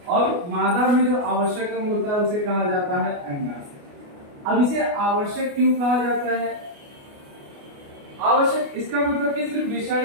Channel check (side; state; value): left; late; 29 ms